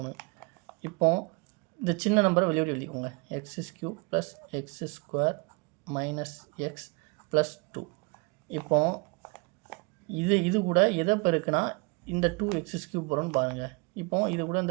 இப்போ இந்த சின்ன நம்பரை வெளியோடு எழுதிக்கோங்க. x³ + x² - x + 2. இப்போ இது கூட எதை பெருக்குனா இந்த 2x³ வரும்னு பாருங்கள். இப்போ இது கூட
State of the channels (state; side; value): quieter; left; 29.9 dB